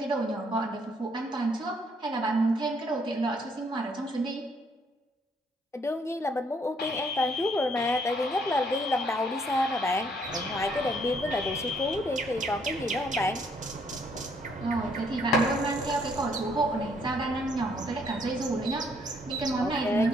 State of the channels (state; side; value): normal; both; correlation 0.67